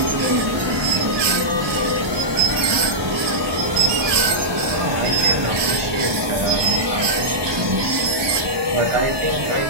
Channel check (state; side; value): late; left; 1.2 ms